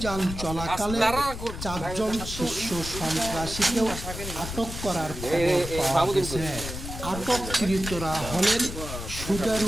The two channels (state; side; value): noise; left; rumble, 8 dB below the sound